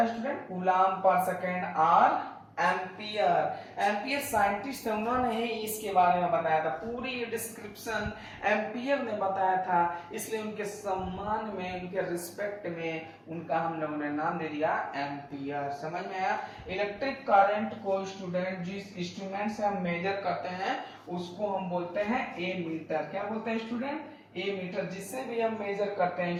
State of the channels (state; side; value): identical; both; correlation 1.00